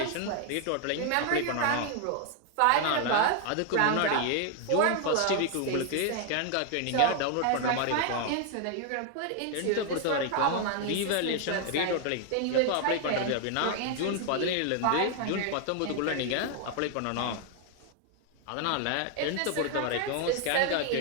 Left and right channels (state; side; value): different; both; correlation 0.00